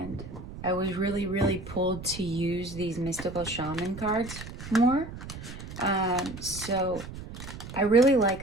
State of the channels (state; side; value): noise; right; rumble, 11 dB below the sound